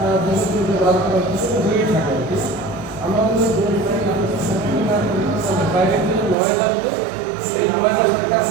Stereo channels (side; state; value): left; drops out; at 6.4 s